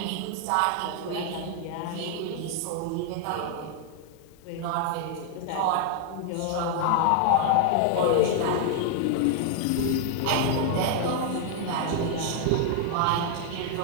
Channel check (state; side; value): different; both; correlation 0.00